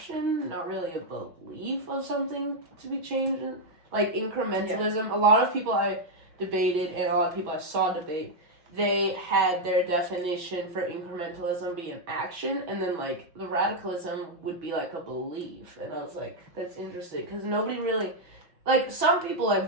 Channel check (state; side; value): late; left; 5.8 ms